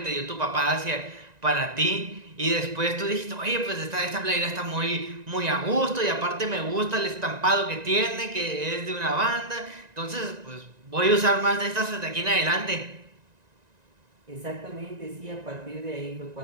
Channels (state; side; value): late; left; 1.9 ms